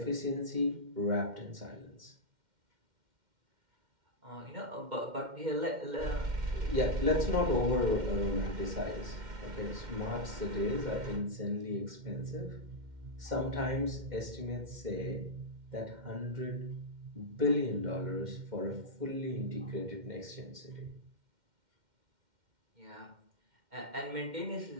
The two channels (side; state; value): left; late; 2.1 ms